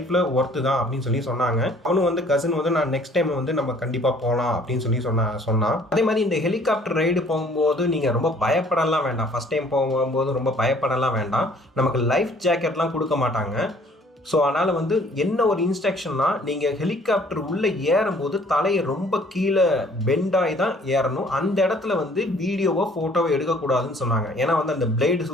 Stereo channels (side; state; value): both; normal; correlation 0.57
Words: ஒர்த்து தான் அப்படின்னு சொன்னாங்க. அவனும் வந்து கசின் வந்து நான் நெக்ஸ்ட் டைம் வந்து நம்ம கண்டிப்பாக போகலாம் அப்படின்னு சொன்னான். அதே மாதிரி இந்த ஹெலிகாப்டர் ரைடு போகும்போது நீங்கள் ரொம்ப பயப்படலாம் வேண்டாம். ஃபஸ்ட் டைம் போகும்போது ரொம்ப பயப்படலாம் வேண்டாம். நமக்கு லைஃப் ஜாக்கெட்லாம் கொடுக்க மாட்டாங்க. ஸோ அதனால் வந்து என்ன ஒரு இன்ஸ்ட்ரக்ஷன்னா, நீங்கள் ஹெலிகாப்டர் உள்ளே ஏறும்போது தலையை ரொம்ப கீழே பெண்டாகி தான் ஏறணும். அந்த இடத்துல வந்து வீடியோவோ ஃபோட்டோவோ எடுக்கக்கூடாதுன்னு சொன்னாங்க. ஏன்னா வந்து அந்த பிளேடு